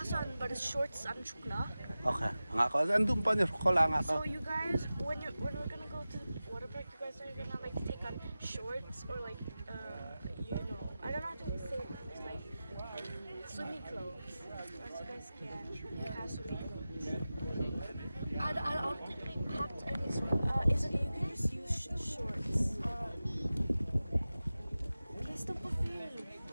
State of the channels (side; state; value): both; inverted; correlation -0.95